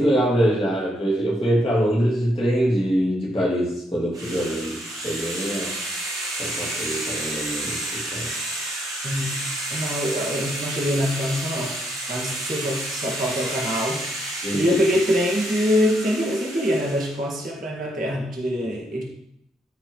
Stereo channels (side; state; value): both; normal; correlation 0.75